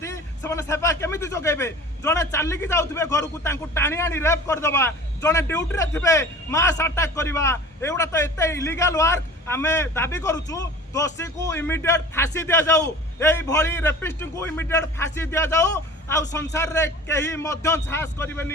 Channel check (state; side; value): normal; both; correlation 0.42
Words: से माने सेवा केमिति जोगेबे जने चाली की जाउथबे घर को तांको टाणी आनी रेप कर दबा जने ड्यूटी रे थिबे मास अटैक करबा एउडा तो एते इलीगल वर्क आमे दाबी करूछु दोषी को इमीडिएट फांसी दिया जाऊ एई भली रेपिस्ट को इमीडिएट फांसी दिया जाऊ आ संसार रे केही मध्य साहस